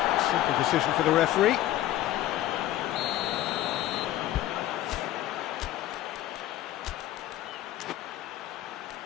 Simple decision for the referee.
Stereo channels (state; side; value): quieter; right; 13.9 dB